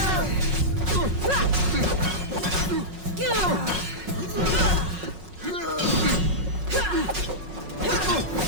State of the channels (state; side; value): late; left; 5.4 ms